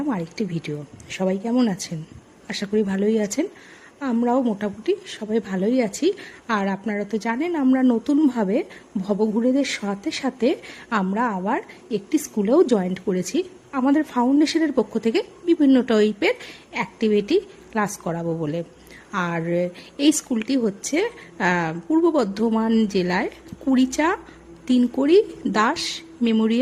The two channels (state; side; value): identical; both; correlation 1.00